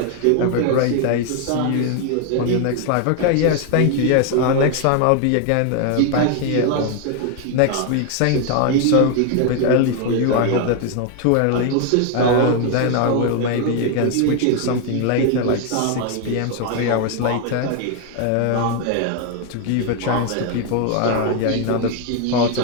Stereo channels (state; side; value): different; both; correlation 0.01